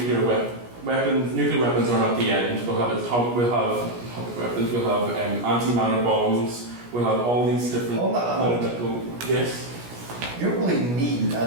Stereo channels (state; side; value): late; left; 17 ms